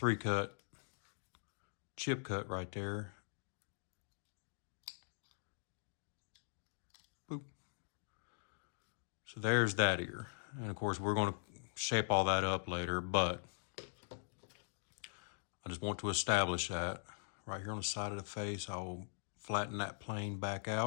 chip cut right there. Boop. So there's that ear. And of course we're going to shape all that up later, but I just want to establish that right here on the side of the face. I'll flatten that plane back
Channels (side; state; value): right; silent; digital silence